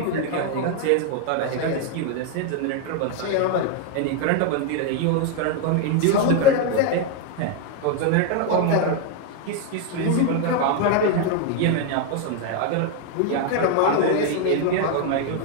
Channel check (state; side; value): different; both; correlation 0.01